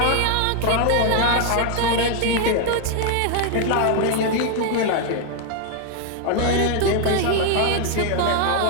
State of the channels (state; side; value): different; both; correlation 0.00